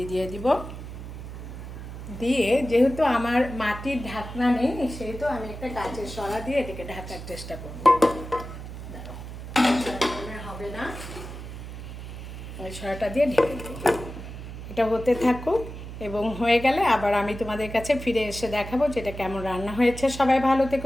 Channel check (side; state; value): right; noise; hum, 10 dB below the sound